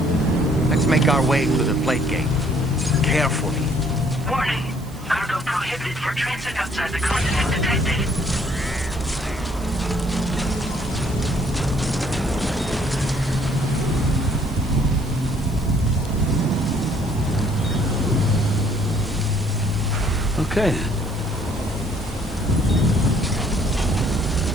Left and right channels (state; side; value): noise; right; hiss, 22 dB below the sound